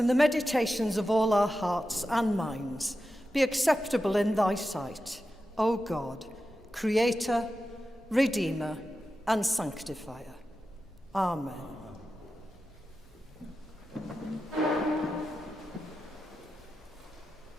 the meditations of all our hearts and minds be acceptable in thy sight, O God, Creator, Redeemer, and Sanctifier. Amen.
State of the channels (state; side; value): normal; both; correlation 0.91